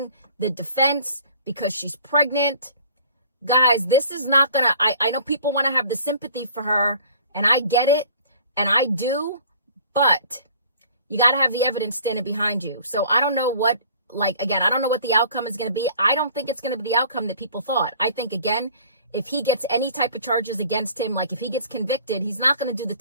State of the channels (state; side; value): inverted; both; correlation -0.51